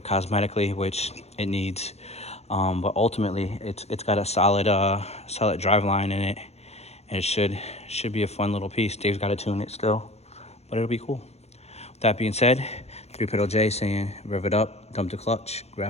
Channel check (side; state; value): right; late; 0.31 ms